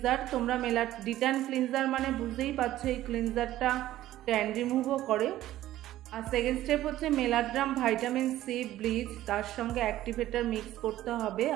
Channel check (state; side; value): quieter; left; 14.2 dB